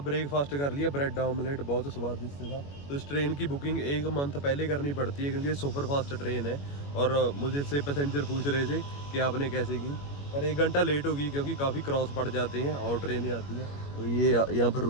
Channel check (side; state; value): right; late; 21 ms